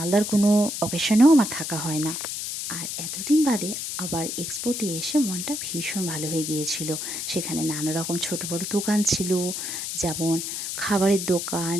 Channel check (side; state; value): left; noise; hiss, 5 dB below the sound